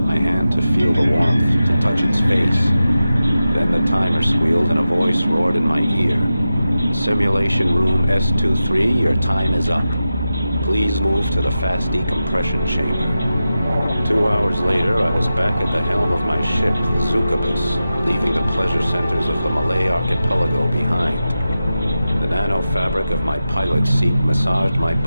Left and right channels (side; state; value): both; inverted; correlation -0.93